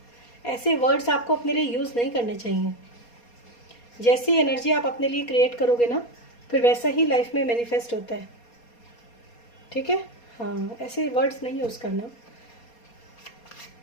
ऐसे वर्ड्स आपको अपने लिए यूज़ नहीं करने चाहिए। जैसी एनर्जी आप अपने लिए क्रिएट करोगे ना, फिर वैसा ही लाइफ में मैनिफेस्ट होता है। ठीक है, हाँ, ऐसे वर्ड्स नहीं यूज़ करना।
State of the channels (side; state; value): right; late; 4.2 ms